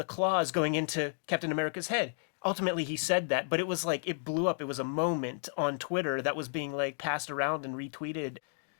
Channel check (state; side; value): silent; right; 56 dB below the other